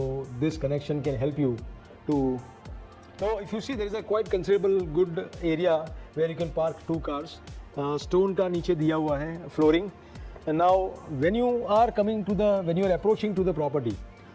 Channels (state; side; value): identical; both; correlation 1.00